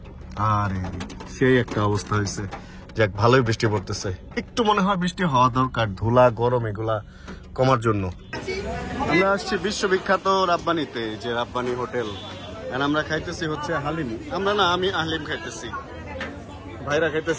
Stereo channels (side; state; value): both; identical; correlation 1.00